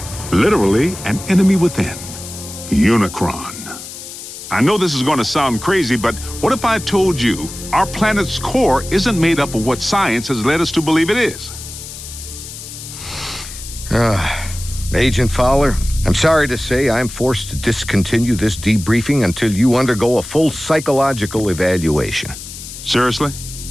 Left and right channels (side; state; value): left; noise; hiss, 12 dB below the sound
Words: Literally, an enemy within. Unicron. I know this is going to sound crazy, but what if I told you our planet's core isn't made up of what science has led us to believe it is? Agent Fowler, I'm sorry to say I'm forced to discontinue this debriefing until you undergo a full psychological evaluation. Seriously?